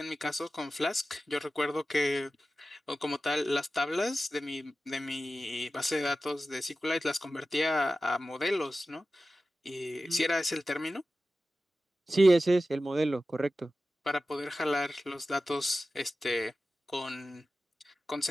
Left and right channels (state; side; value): normal; both; correlation 0.94